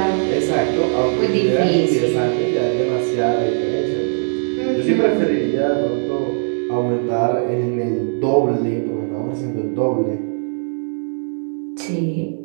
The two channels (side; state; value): left; silent; 66 dB below the other